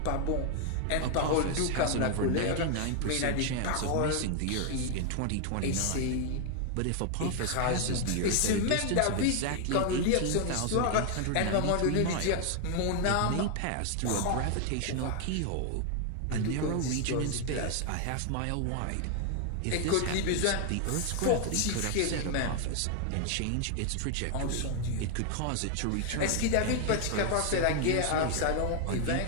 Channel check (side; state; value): both; different; correlation 0.00